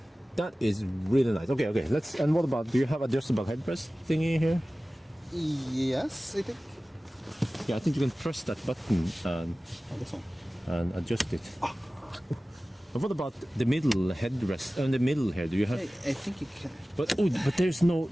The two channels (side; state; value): both; normal; correlation 0.97